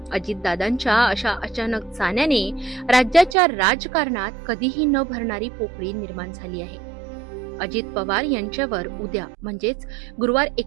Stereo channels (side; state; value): left; drops out; at 3.4 s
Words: अजितदादांच्या अशा अचानक जाण्याने राज्याच्या राजकारणात कधीही न भरणारी पोकळी निर्माण झाली आहे। अजित पवार यांच्यावर उद्या म्हणजेच गुरुवार